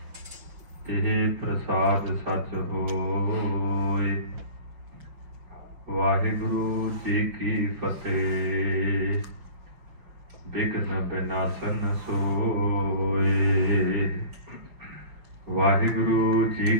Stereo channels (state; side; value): late; left; 5.6 ms